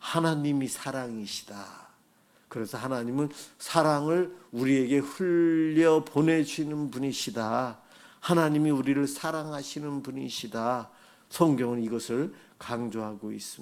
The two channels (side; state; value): both; identical; correlation 1.00